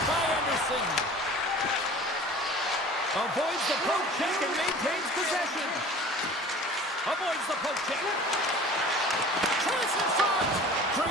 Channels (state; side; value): normal; both; correlation 0.43